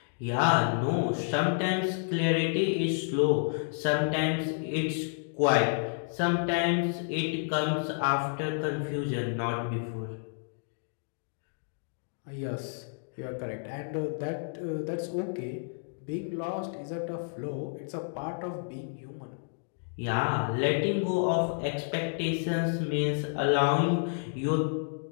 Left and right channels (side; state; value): right; silent; digital silence